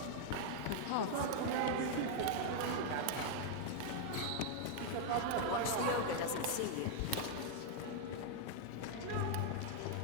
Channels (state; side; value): different; both; correlation 0.00